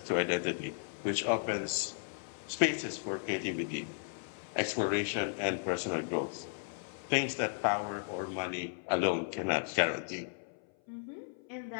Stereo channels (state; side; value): silent; right; 55 dB below the other